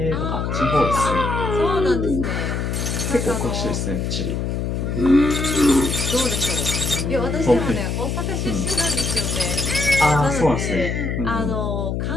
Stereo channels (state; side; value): noise; left; hum, 1 dB below the sound